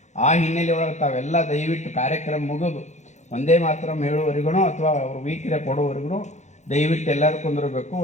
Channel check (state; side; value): late; right; 0.34 ms